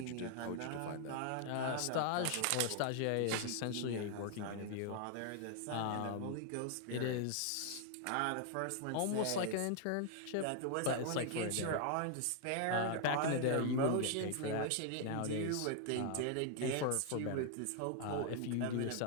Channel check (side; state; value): both; different; correlation 0.00